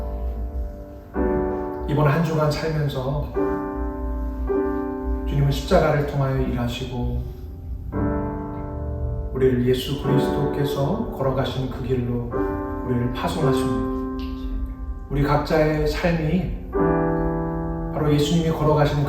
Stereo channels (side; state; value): both; identical; correlation 1.00